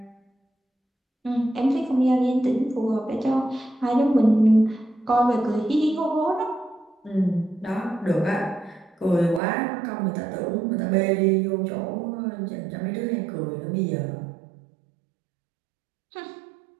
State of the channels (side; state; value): left; drops out; at 9.4 s